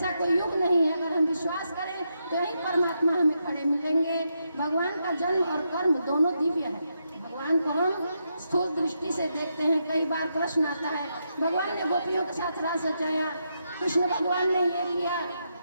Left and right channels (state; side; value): inverted; both; correlation -0.82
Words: कोई युग नहीं है। अगर हम विश्वास करें तो यही परमात्मा हमें खड़े मिलेंगे। भगवान का जन्म और कर्म दोनों दिव्य है। भगवान को हम स्थूल दृष्टि से देखते हैं। कई बार प्रश्न आता है, भगवान ने गोपियों के साथ रास रचाया, कृष्ण भगवान ने ये किया।